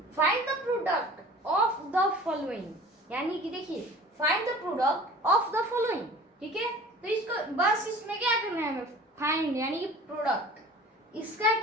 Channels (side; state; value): both; normal; correlation 0.44